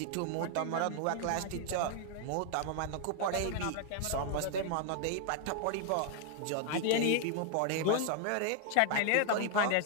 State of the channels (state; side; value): different; both; correlation 0.00